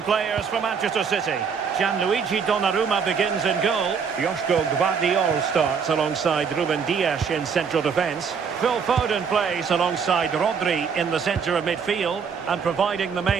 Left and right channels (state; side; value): quieter; left; 6.3 dB